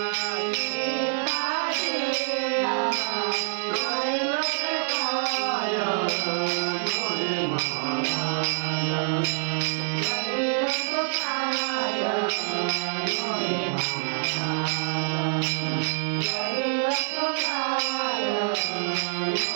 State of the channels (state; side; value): silent; left; digital silence